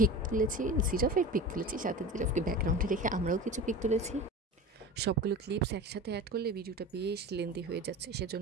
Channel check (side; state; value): both; normal; correlation 0.32